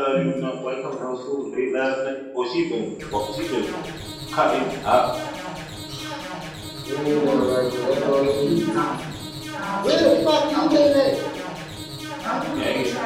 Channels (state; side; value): identical; both; correlation 1.00